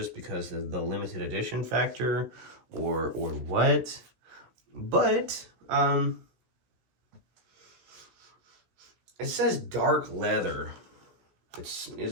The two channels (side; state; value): left; late; 16 ms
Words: because of the limited edition factor or what. But, it says dark leather. Is